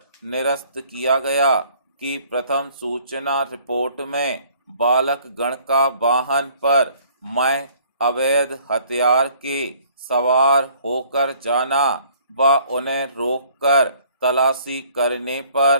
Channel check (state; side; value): inverted; both; correlation -0.58